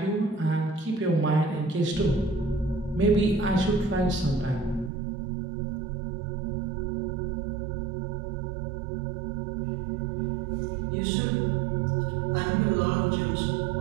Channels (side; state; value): left; drops out; at 4.9 s